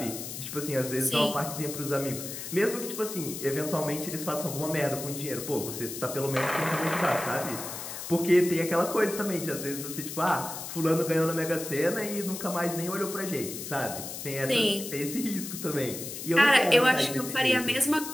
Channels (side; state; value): left; noise; hiss, 8 dB below the sound